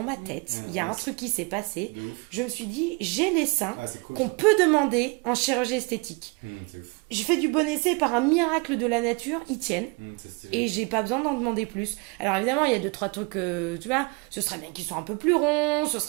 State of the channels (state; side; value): quieter; left; 30.2 dB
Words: ma tête, il y a un truc qui s'est passé. De ouf. Je me suis dit, j'ai les seins Ah, c'est cool. qu'on peut demander en chirurgie esthétique. C'est ouf. J'ai fait du bon essai par un miracle de la nature, ils tiennent. C'est stylé. Et j'ai pas besoin d'en demander plus. Alors évidemment, il y a 2-3 trucs, tu vois, ce serait bien qu'ils soient un peu plus ronds, ce